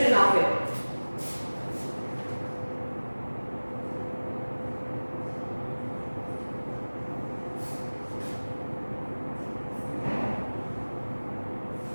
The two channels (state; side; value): inverted; both; correlation -1.00